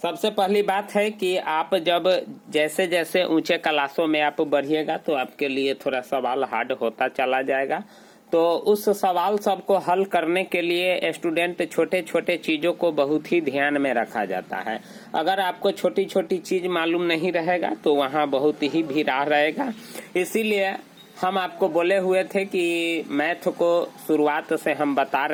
पहली बात है कि आप जब जैसे जैसे ऊंचे क्लासों में आप बढ़िएगा तो आपके लिए थोड़ा सवाल हार्ड होता चला जाएगा। तो उस सवाल सबको हल करने के लिए स्टूडेंट छोटे छोटे चीज़ों को बहुत ही ध्यान में रखा जाता है। अगर आपको छोटी छोटी चीज़ मालूम नहीं रहेगा तो वहाँ बहुत ही भीड़ा रहेगा। इसीलिए हम आपको बोले हुए थे कि मैथ को शुरुआत से हम बता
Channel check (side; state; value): both; identical; correlation 1.00